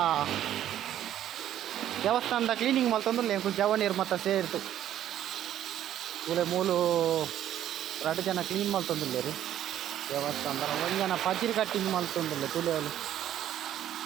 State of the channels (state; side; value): quieter; left; 11.5 dB